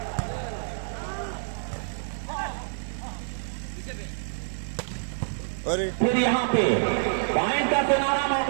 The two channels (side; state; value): left; silent; 60 dB below the other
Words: अरे फिर यहाँ पे पॉइंट का सुनहरा